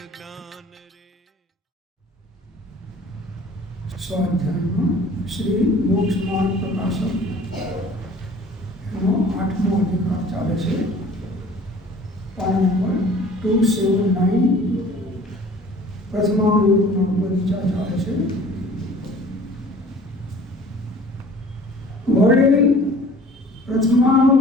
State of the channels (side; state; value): both; normal; correlation 0.48